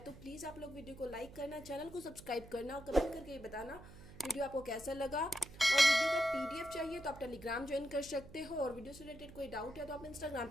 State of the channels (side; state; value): right; noise; hum, 17 dB below the sound